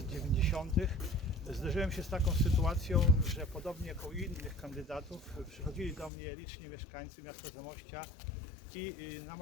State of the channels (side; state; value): right; drops out; at 6.1 s